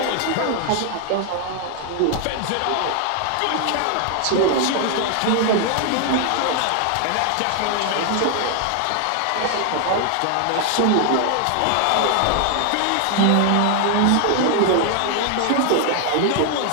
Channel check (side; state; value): both; different; correlation 0.00